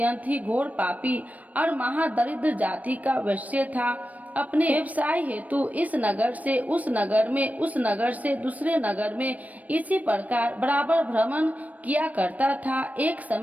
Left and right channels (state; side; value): late; left; 0.072 ms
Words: ही घोर पापी और महादरिद्र जाति का वैश्य था। अपने व्यवसाय हेतु इस नगर से उस नगर में, उस नगर से दूसरे नगर में इसी प्रकार बराबर भ्रमण किया करता था। एक